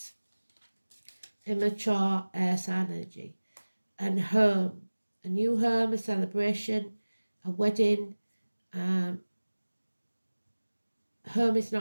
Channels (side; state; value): both; inverted; correlation -1.00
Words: Immature air sign energy. And home, a new home, a celebration, a wedding. Home is